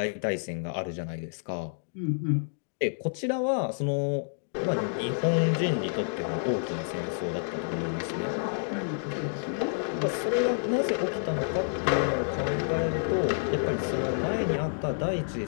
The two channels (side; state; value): right; silent; digital silence